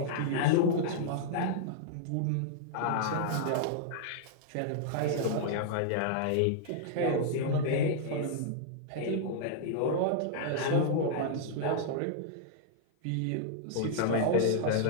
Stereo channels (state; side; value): different; both; correlation -0.01